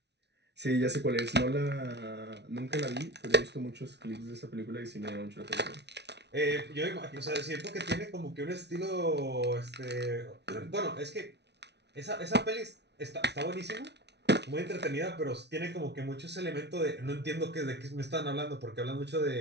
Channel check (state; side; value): late; left; 0.50 ms